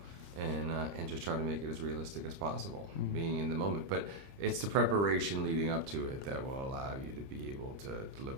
and just try to make it as realistic as possible, being in the moment. But it's the preparation leading up to it that will allow you to be able to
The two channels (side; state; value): left; late; 30 ms